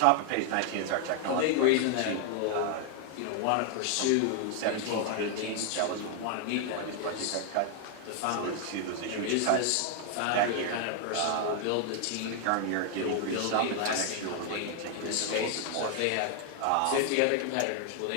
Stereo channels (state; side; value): different; both; correlation 0.00